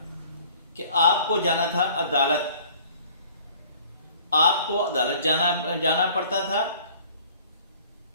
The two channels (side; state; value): both; inverted; correlation -0.52